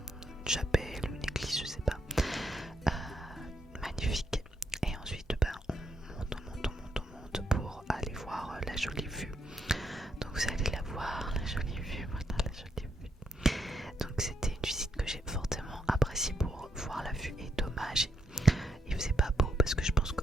une chapelle, une église, je sais pas, magnifique. Et ensuite on monte pour aller voir la jolie vue. Donc vous allez la voir, la jolie vue, voilà la jolie vue. Donc c'était une visite que j'ai fortement appréciée pour voir la vue, et dommage, il faisait pas beau parce que je pense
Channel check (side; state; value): both; normal; correlation 0.78